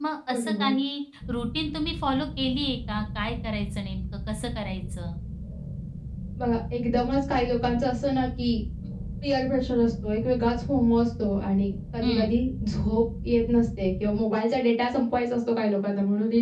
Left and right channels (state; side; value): identical; both; correlation 1.00